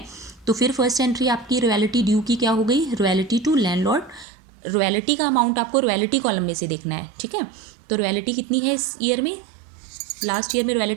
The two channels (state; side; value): drops out; left; at 4.2 s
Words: तो फिर फर्स्ट एंट्री आपकी रॉयल्टी ड्यू की क्या हो गई, रॉयल्टी टू लैंडलॉर्ड। रॉयल्टी का अमाउंट आपको रॉयल्टी कॉलम में से देखना है। ठीक है, तो रॉयल्टी कितनी है इस ईयर में, लास्ट ईयर में